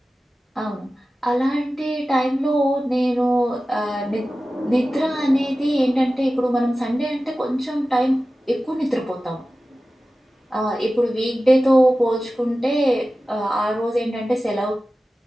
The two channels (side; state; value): both; normal; correlation 0.95